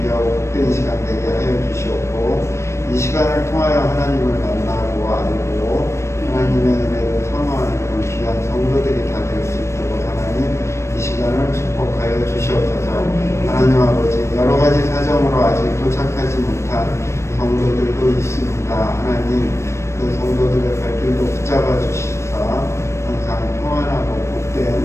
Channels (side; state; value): right; late; 0.13 ms